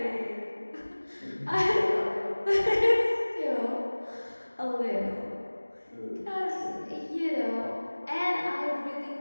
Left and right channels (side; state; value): both; inverted; correlation -1.00